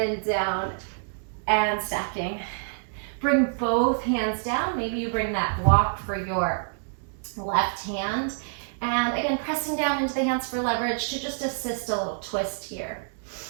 down and stacking. Bring both hands down. Maybe you bring that block for your left hand. And again, pressing down into the hands for leverage to just assist a little twist here.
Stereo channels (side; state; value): left; silent; 60 dB below the other